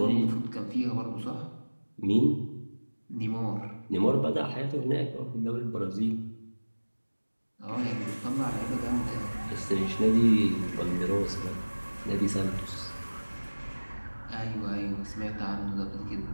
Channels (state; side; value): inverted; both; correlation -1.00